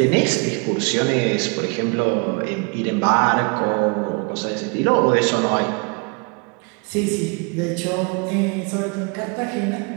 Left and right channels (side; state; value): left; quieter; 32.8 dB